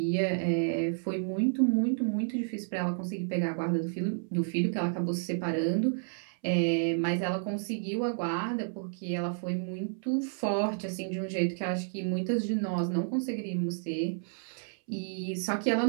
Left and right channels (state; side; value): silent; left; 57 dB below the other